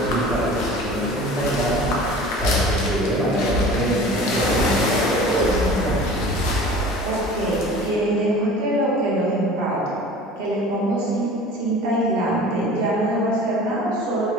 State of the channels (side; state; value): both; normal; correlation 0.42